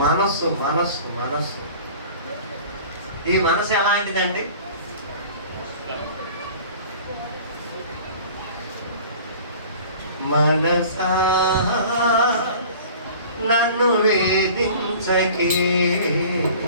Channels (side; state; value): both; inverted; correlation -0.45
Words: మనస్సు. మనస్సు మనస్సు ఈ మనసు ఎలాంటిదండి? మనసా నన్ను వేధించకే,